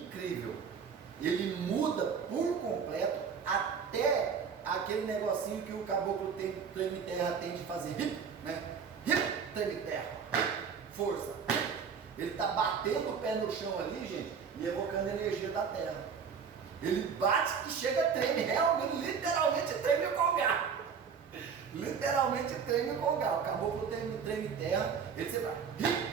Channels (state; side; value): quieter; left; 6.4 dB